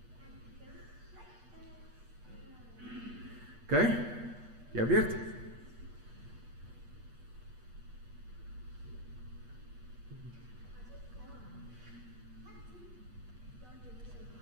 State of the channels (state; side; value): late; left; 8.7 ms